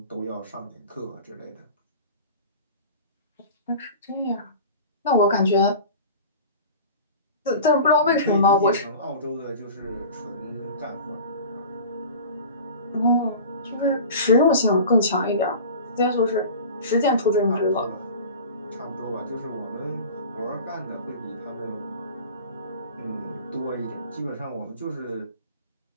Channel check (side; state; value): both; inverted; correlation -0.37